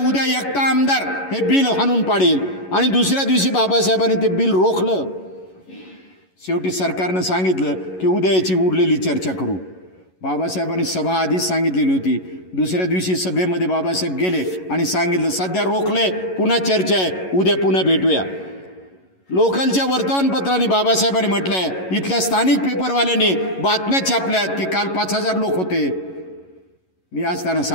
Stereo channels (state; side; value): late; right; 11 ms